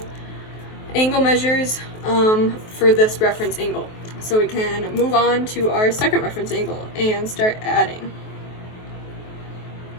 angle measures for this reference angle. So we can move on to our second reference angle and start adding.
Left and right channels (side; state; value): right; late; 23 ms